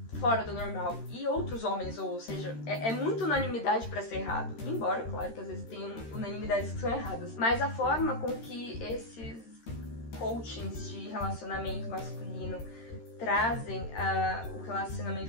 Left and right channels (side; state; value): right; late; 13 ms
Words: fora do normal. E outros homens, ou seja, é muita unanimidade pra ser errado. Embora, claro, que às vezes tem unanimidades que são erradas. Mas a forma com que esses coachings de relacionamento masculino trazem o